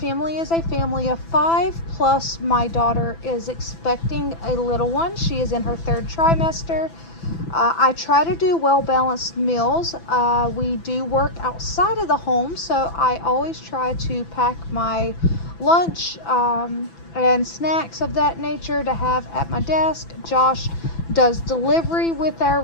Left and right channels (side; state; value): right; late; 6.0 ms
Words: is a family of 5, plus my daughter is expecting a little one. She is in her 3rd trimester. I try to do well-balanced meals. We do work outside of the home, so I always try to pack my lunch and snacks of that nature to have at my desk. Josh does delivery with our